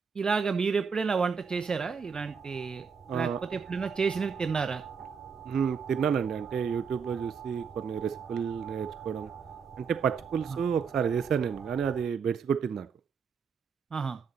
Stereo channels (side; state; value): left; quieter; 6.1 dB